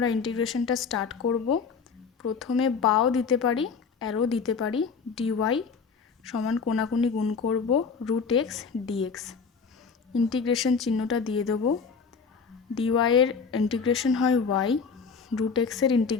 ইন্টিগ্রেশনটা স্টার্ট করব। প্রথমে বাও দিতে পারি, অ্যারো দিতে পারি। dy সমান কোনাকুনি গুণ করব রুট এক্স ডিএক্স। ইন্টিগ্রেশন চিহ্নটা দিয়ে দেবো। ডিওয়াই এর ইন্টিগ্রেশন হয় ওয়াই, রুট এক্সের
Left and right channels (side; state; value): right; quieter; 5.5 dB